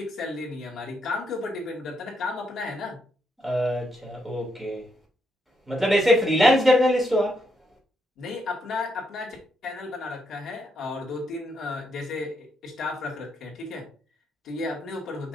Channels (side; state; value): both; normal; correlation 0.78